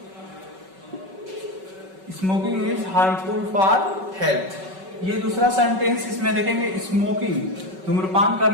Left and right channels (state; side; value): late; left; 5.3 ms